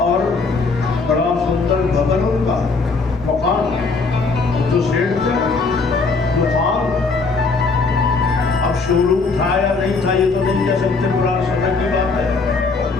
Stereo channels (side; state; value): right; quieter; 4.2 dB